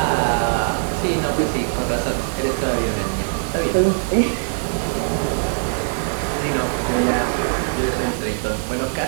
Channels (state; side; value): silent; left; digital silence